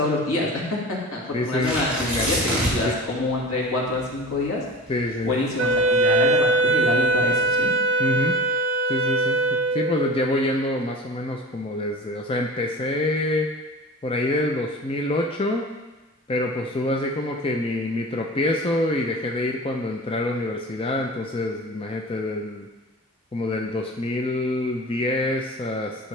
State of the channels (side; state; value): both; normal; correlation 0.35